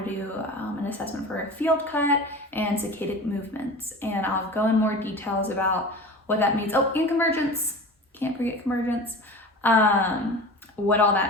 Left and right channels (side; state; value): both; normal; correlation 0.35